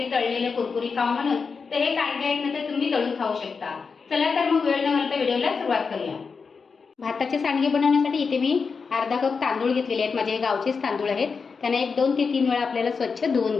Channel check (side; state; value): right; quieter; 5.2 dB